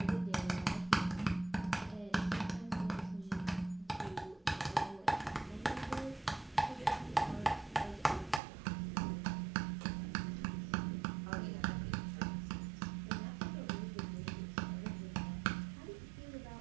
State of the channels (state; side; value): drops out; left; at 8.4 s